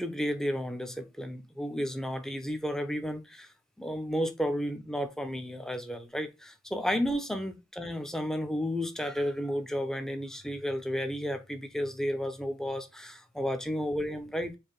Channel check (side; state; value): both; normal; correlation 0.89